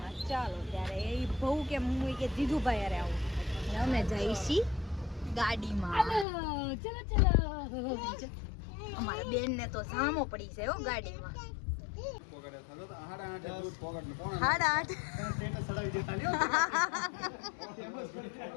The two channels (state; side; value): drops out; right; at 6.2 s